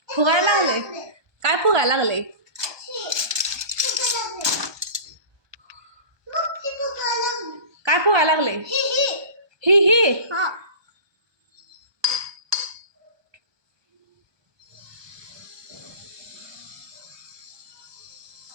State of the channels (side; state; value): left; late; 1.2 ms